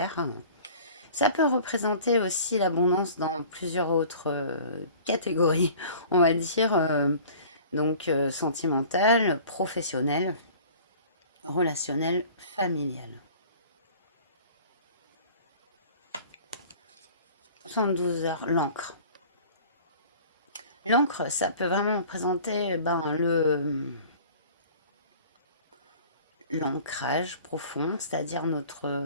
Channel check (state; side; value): inverted; both; correlation -0.46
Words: Ça peut représenter aussi l'abondance dans plusieurs autres catégories, on va dire, donc sentimentale, professionnelle, relationnelle, familiale. 72 heures, l'encre. L'encre, ça peut vraiment représenter l'ancrage profond, c'est-à-dire